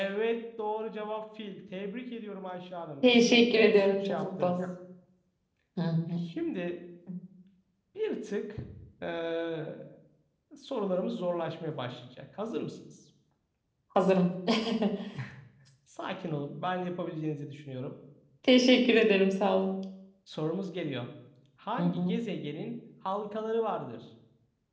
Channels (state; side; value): identical; both; correlation 1.00